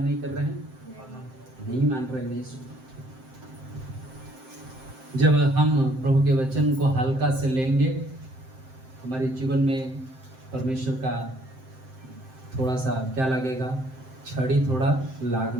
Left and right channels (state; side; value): late; left; 7.7 ms